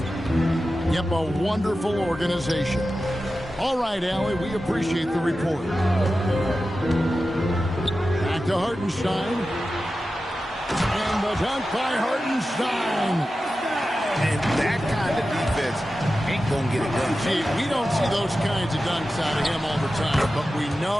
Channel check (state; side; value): normal; both; correlation 0.93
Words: Yep, a wonderful organization. All right, Allie, we appreciate the report. Back to Hartenstein. And the dunk by Hartenstein. And that kind of defense ain't going to get it done. Gee, we don't see those kinds of dunks out of him all the time, but we